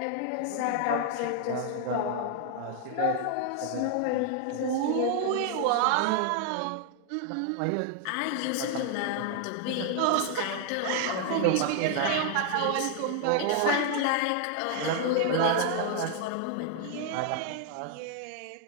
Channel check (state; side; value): different; both; correlation 0.00